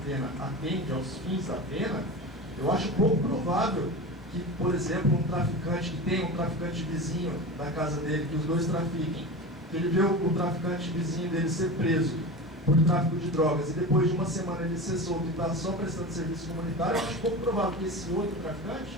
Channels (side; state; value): both; normal; correlation 0.28